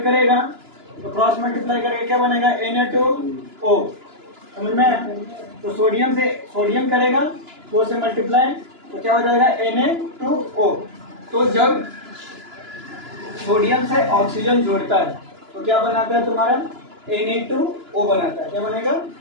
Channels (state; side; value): late; left; 2.9 ms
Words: करेगा तो क्रॉस मल्टीप्लाई करके क्या बनेगा, Na2O, समझ में। तो सोडियम से सोडियम करेगा 2 से मल्टीप्लाई तो क्या हो जाएगा, Na2O। तो जब सोडियम से ऑक्सीजन जोड़ता है तो क्या बनाता है तुम्हारा Na2O बनाता है। क्या बनेगा?